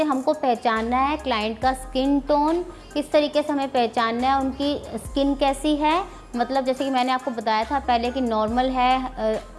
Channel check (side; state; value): both; identical; correlation 1.00